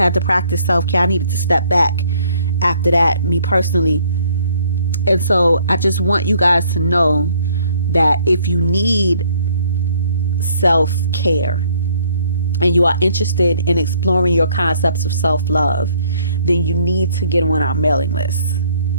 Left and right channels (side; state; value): both; inverted; correlation -0.63